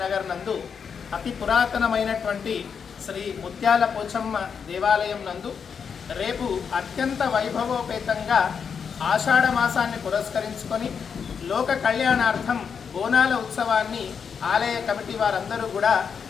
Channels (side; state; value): right; quieter; 6.6 dB